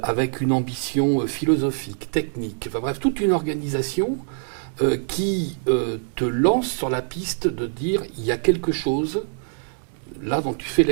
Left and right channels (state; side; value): silent; left; digital silence